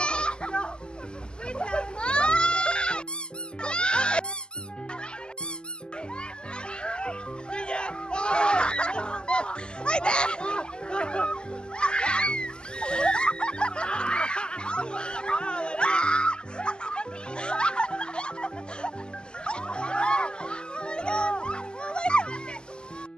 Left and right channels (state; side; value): late; right; 0.047 ms